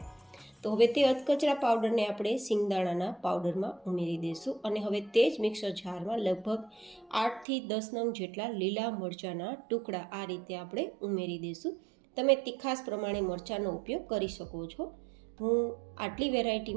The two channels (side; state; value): left; drops out; at 7.5 s